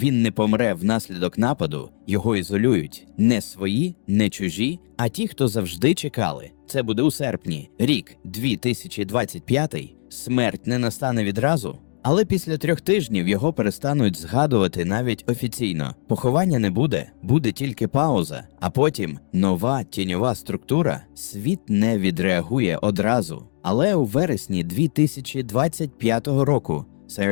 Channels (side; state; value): right; silent; digital silence